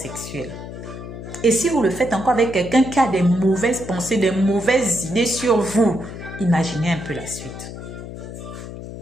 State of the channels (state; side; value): noise; left; hum, 11 dB below the sound